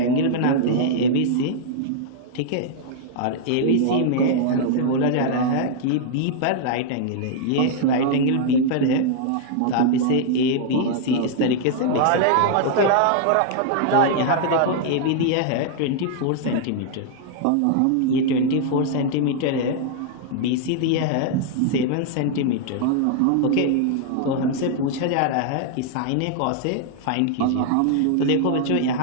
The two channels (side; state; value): both; different; correlation -0.01